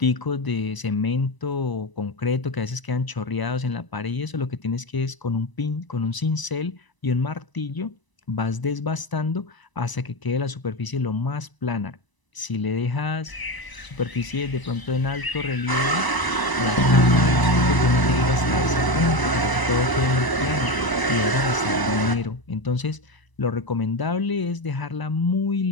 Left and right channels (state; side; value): late; right; 1.0 ms